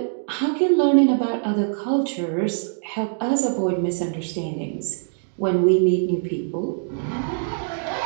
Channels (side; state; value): left; silent; digital silence